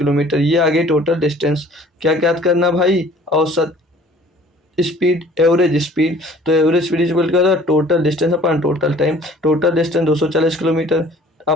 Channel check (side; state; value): both; normal; correlation 0.52